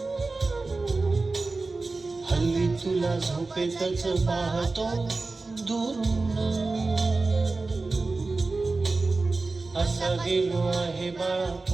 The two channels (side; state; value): left; quieter; 3.6 dB